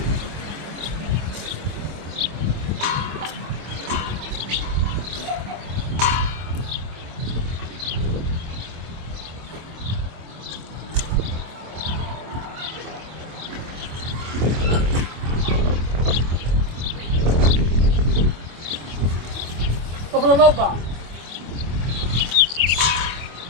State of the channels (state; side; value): late; left; 25 ms